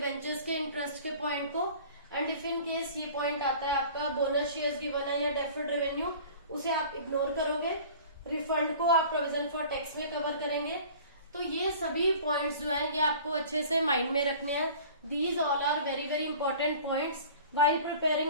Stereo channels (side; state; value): both; inverted; correlation -0.45